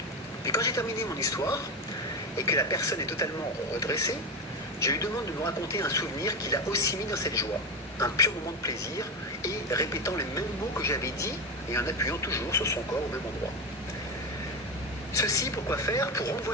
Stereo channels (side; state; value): both; normal; correlation 0.17